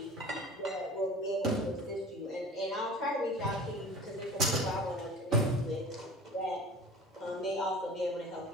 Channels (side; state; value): both; normal; correlation 0.41